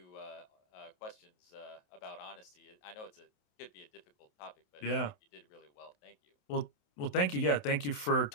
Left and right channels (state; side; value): late; right; 28 ms